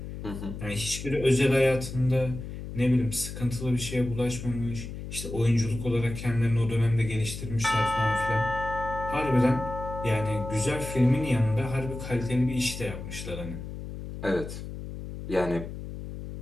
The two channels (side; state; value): left; noise; hum, 9 dB below the sound